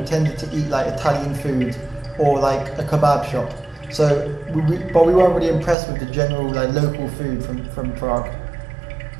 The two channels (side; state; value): left; drops out; at 5.8 s